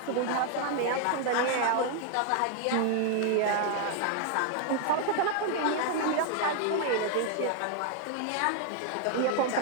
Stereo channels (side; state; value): both; different; correlation 0.00